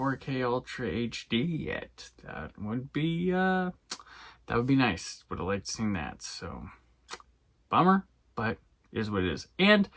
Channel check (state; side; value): identical; both; correlation 1.00